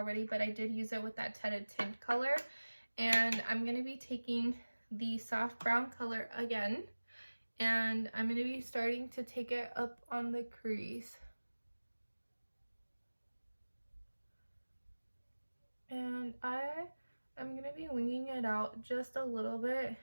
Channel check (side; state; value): both; inverted; correlation -1.00